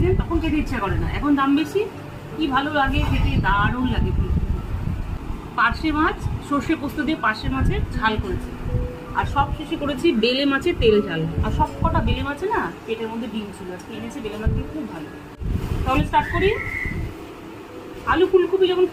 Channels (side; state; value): both; identical; correlation 1.00